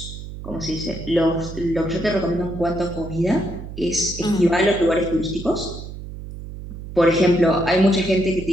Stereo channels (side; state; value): right; noise; hum, 11 dB below the sound